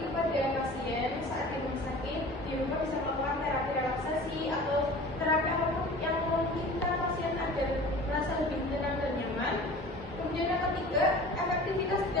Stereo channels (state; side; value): normal; both; correlation 0.41